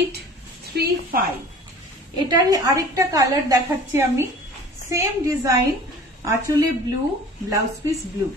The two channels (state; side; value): normal; both; correlation 0.44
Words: এটারই আরেকটা কালার দেখাচ্ছি আমি, সেম ডিজাইন, আঁচলে blue, blouse piece blue.